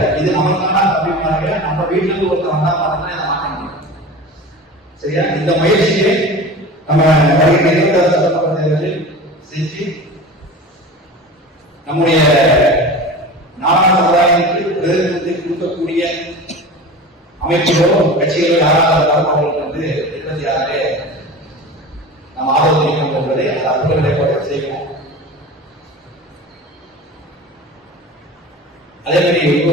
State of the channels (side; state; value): both; normal; correlation 0.34